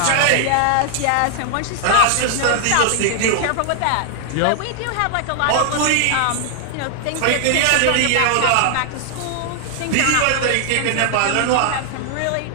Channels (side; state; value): both; different; correlation 0.00